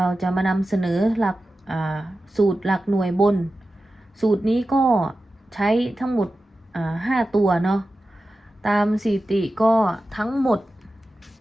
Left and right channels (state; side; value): normal; both; correlation 0.93